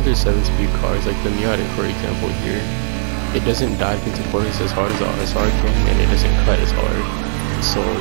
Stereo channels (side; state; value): left; silent; 59 dB below the other